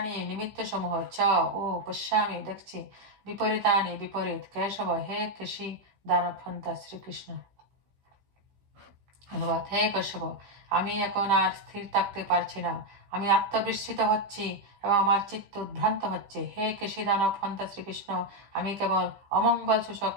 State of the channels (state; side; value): late; left; 15 ms